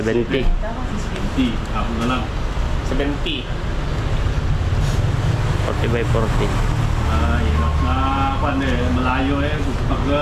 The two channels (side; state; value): both; identical; correlation 1.00